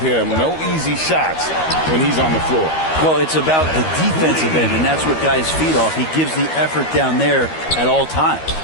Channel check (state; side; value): late; right; 13 ms